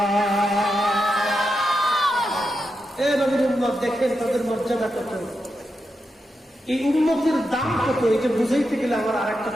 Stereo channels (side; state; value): both; normal; correlation 0.87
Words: এ নবীর উম্মত দেখেন তাদের মর্যাদা কত, এই উম্মতের দাম কত, এটা বুঝাইতে গেলে আমার আরেকটা